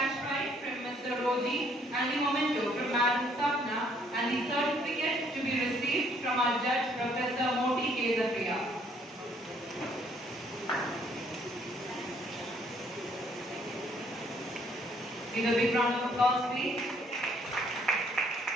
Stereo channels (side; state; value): both; normal; correlation 0.65